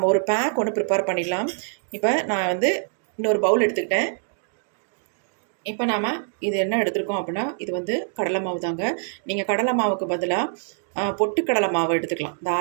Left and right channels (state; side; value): silent; left; digital silence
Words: ஒரு பேக் ஒன்று ப்ரிப்பேர் பண்ணிடலாம். இப்போ நான் வந்து இன்னொரு பவுல் எடுத்துக்கிட்டேன். இப்போ நாம் இது என்ன எடுத்துருக்கோம் அப்படின்னா, இது வந்து கடலை மாவு தாங்க. நீங்கள் கடலை மாவுக்கு பதிலாக பொட்டுக்கடலை மாவு எடுத்துக்கலாம்